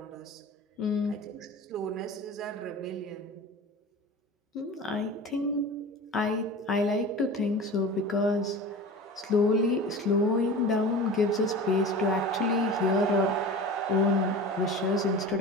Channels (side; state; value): both; normal; correlation 0.34